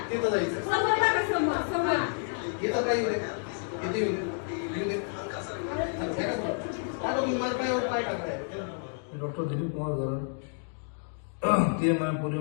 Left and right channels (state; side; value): silent; right; 57 dB below the other